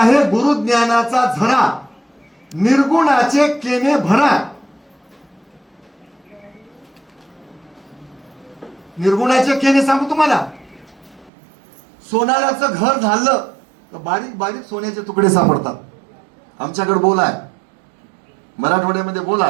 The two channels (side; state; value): left; drops out; at 11.3 s